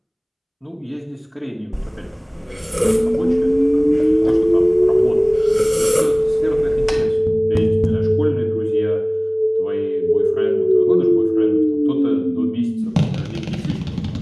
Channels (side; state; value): both; identical; correlation 1.00